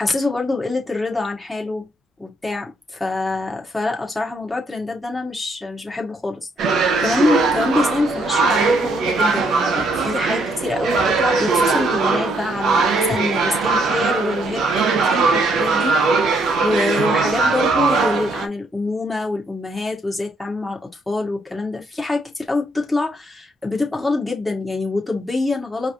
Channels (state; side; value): normal; both; correlation 0.72